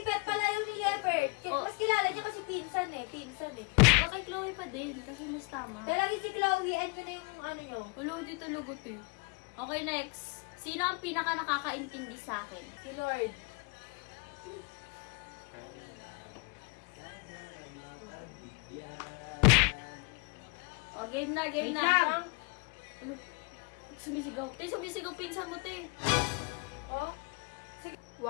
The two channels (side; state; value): right; quieter; 32.0 dB